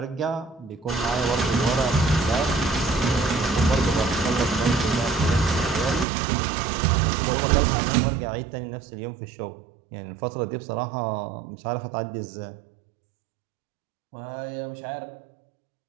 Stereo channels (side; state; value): left; drops out; at 6.1 s